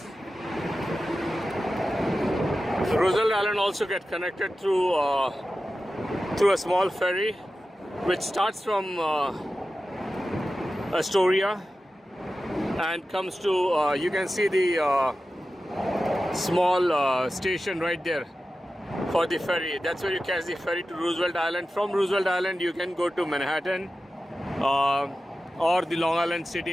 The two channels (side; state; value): both; normal; correlation 0.93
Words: Roosevelt Island also get connected through a small ferry, which starts from Astoria and comes to. You can see the small station right there for the ferry. That's where you catch the ferry to Roosevelt Island. From Roosevelt Island, you can go to Manhattan or the Long Island